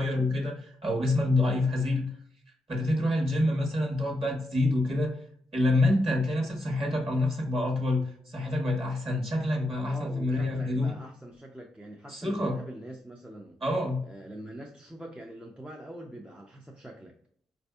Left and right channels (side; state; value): both; normal; correlation 0.83